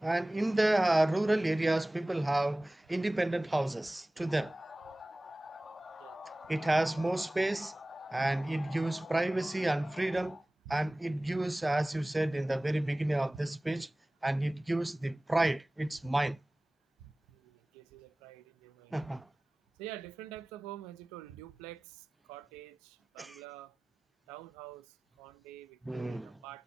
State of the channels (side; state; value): both; normal; correlation 0.98